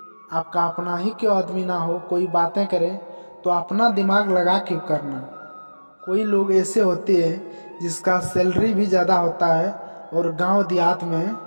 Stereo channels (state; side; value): inverted; both; correlation -1.00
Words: आपका अपना ही क्यों आदमी ना हो, कोई बातें करे तो अपना दिमाग लगा के करना। कोई लोग ऐसे होते हैं जिसका सैलरी भी ज़्यादा होता है और गांव देहात में